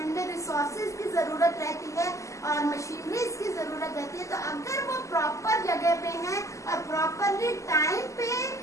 में रिसोर्सेज की जरूरत रहती है और मशीनरीज की जरूरत रहती है, तो अगर वो प्रॉपर जगह पे हैं और प्रॉपरली टाइम पे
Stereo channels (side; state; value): right; late; 0.15 ms